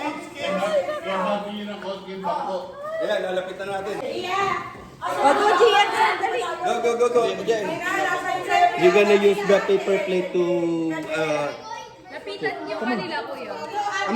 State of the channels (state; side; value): identical; both; correlation 1.00